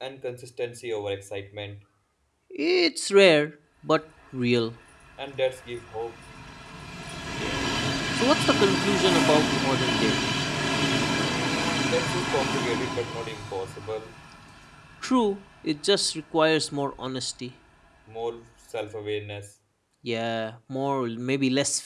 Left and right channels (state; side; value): identical; both; correlation 1.00